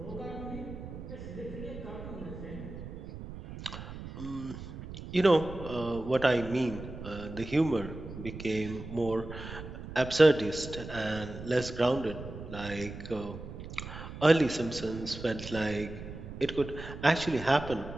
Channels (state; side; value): noise; right; rumble, 11 dB below the sound